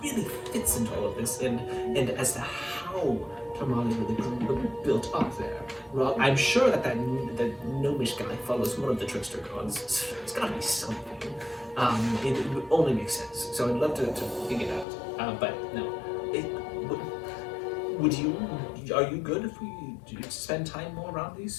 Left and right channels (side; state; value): right; drops out; at 14.9 s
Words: really fits into all of this, and as to how Tomali really built up there. Well, I'm sure that gnomish guy follows one of the trickster gods. It's gotta be something. It would only make sense. So I'd love to figure it out. But no, are you good if we spend time more around